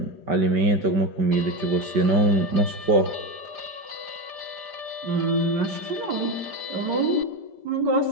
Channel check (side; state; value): left; late; 5.2 ms